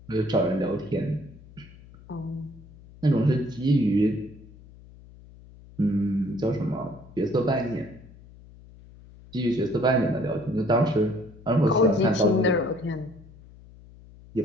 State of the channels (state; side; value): noise; left; hum, 21 dB below the sound